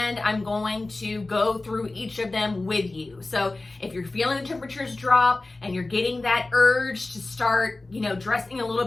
I'm going to go through each of them with you. So if you're feeling the temperatures drop and you're getting that urge to start, dressing a little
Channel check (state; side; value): quieter; right; 3.1 dB